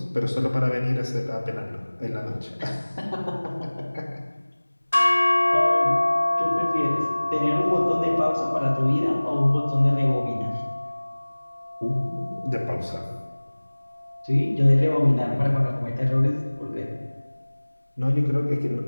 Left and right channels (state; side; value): inverted; both; correlation -1.00